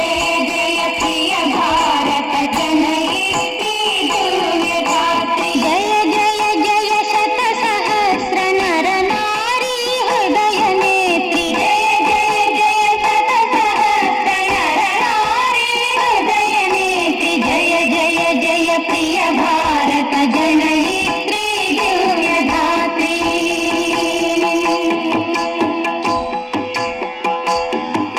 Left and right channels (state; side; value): identical; both; correlation 1.00